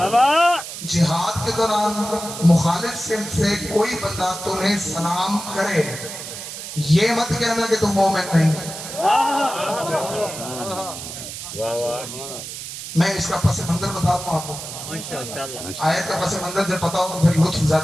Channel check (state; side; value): noise; right; hiss, 9 dB below the sound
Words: جہاد کے دوران مخالف سمت سے کوئی بندہ تمہیں سلام کرے، یہ مت کہنا کہ تم مومن نہیں۔ میں اس کا پس منظر بتاتا ہوں آپ کو، آیت کا پس منظر جب پتا ہو تو پھر لطف